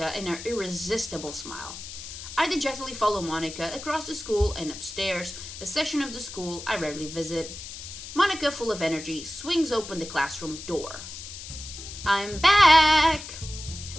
in her irresistible smile. I dejectedly follow Monica across the school and upstairs, a section of the school I rarely visit. Monica, full of energy, swings open the classroom door. I'm back!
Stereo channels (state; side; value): noise; left; hiss, 11 dB below the sound